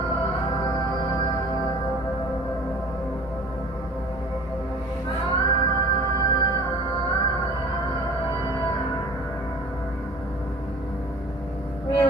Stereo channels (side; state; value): both; normal; correlation 0.46